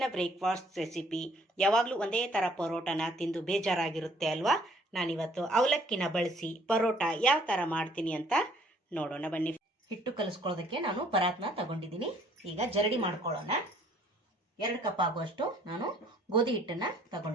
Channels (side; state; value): both; normal; correlation 0.60